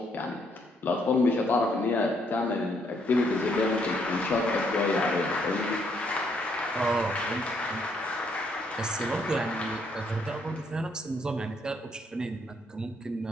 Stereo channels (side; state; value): both; normal; correlation 0.71